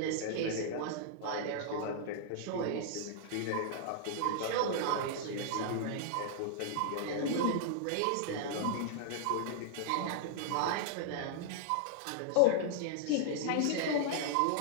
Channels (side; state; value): both; different; correlation -0.01